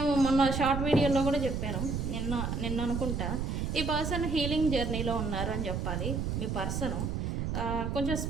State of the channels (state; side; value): noise; right; rumble, 2 dB below the sound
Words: మొన్న షార్ట్ వీడియోలో కూడా చెప్పాను, నిన్న అనుకుంటా, ఈ పర్సన్ హీలింగ్ జర్నీలో ఉన్నారు అని చెప్పాలి. మీ పర్సను కొంచెం